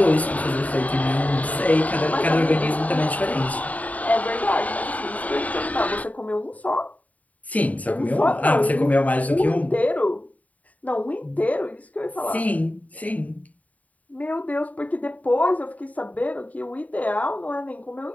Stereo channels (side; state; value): right; late; 0.072 ms